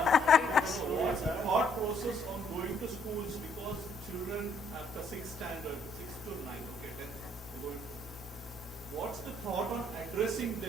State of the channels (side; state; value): both; normal; correlation 0.67